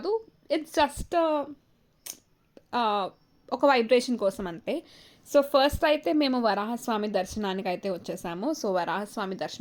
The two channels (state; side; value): identical; both; correlation 1.00